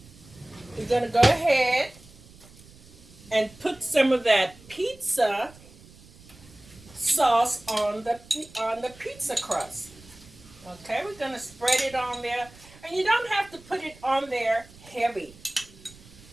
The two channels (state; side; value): noise; right; rumble, 23 dB below the sound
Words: we're going to go ahead and put some of that pizza sauce on the pizza crust. Okay, we're going to spread it on there. And you don't have to put it on there heavy.